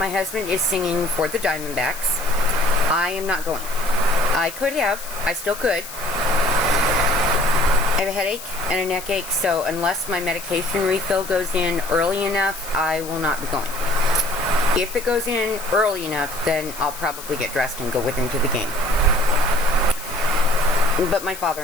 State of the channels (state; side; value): noise; left; hiss, 13 dB below the sound